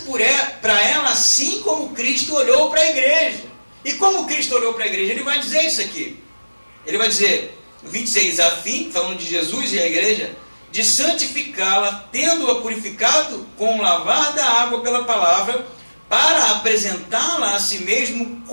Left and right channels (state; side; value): inverted; both; correlation -1.00